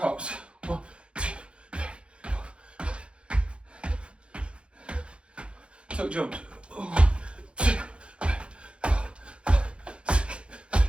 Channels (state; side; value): late; left; 0.058 ms